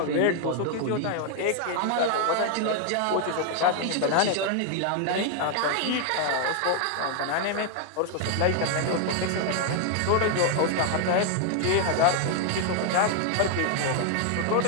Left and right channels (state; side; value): different; both; correlation 0.00